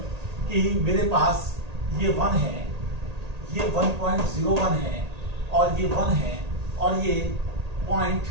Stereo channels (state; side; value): late; left; 1.8 ms